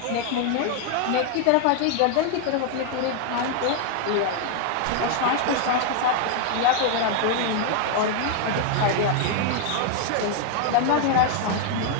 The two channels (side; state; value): both; different; correlation 0.00